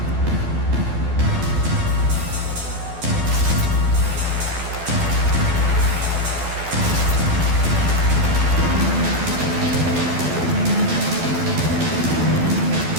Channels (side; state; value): left; late; 12 ms